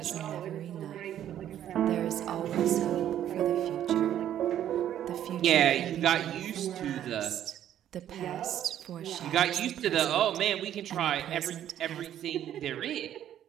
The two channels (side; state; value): left; quieter; 11.0 dB